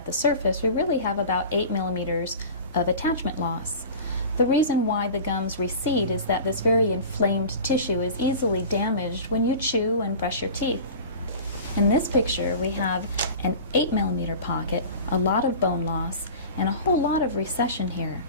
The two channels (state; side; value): inverted; both; correlation -0.37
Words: the surface, we really have about 8 millimeters of attachment loss. The reason why the gums recede is that this very inflamed tissue is easily damaged when you chew and brush your teeth. In this picture, we have an 8 millimeter pocket, a lot of bone loss, and a whole lot of recession here.